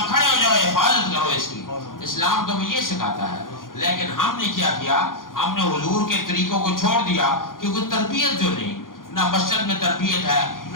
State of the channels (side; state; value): right; late; 0.90 ms